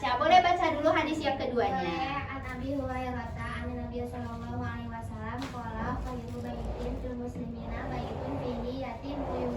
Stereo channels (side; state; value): both; identical; correlation 1.00